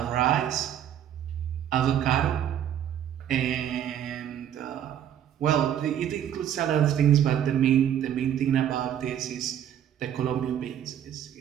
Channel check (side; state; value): left; quieter; 10.2 dB